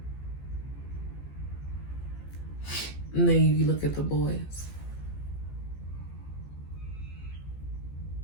And then you look at the boys.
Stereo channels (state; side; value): late; right; 15 ms